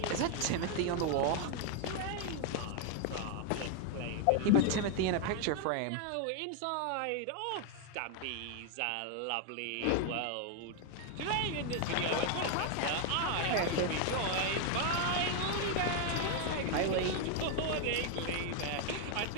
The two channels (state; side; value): different; both; correlation 0.00